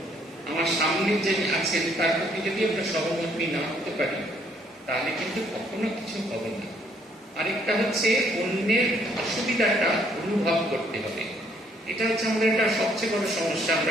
আমার সামনে যে আছেন তার প্রতি যদি আমরা সহমর্মী না হতে পারি, তাহলে কিন্তু কখনো কিছু হবে না। আরেকটা হচ্ছে অন্যের অসুবিধাটা অনুভব করতে হবে, এটা হচ্ছে আমাদের একটা সবচেয়ে বড় সমস্যা।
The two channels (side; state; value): both; normal; correlation 0.67